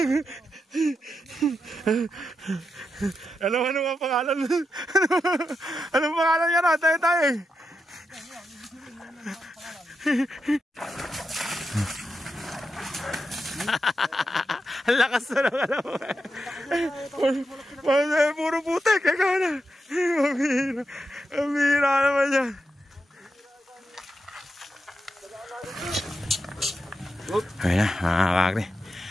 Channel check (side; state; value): both; normal; correlation 0.86